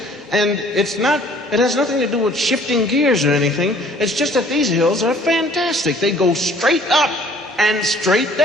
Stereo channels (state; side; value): normal; both; correlation 0.56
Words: And it has nothing to do with shifting gears or anything. It's just that these hills are fantastic. They go straight up and straight